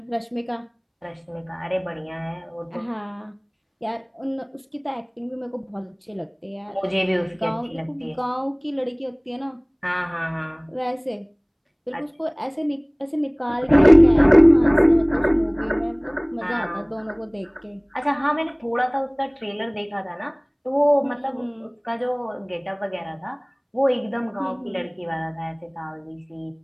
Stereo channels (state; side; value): identical; both; correlation 1.00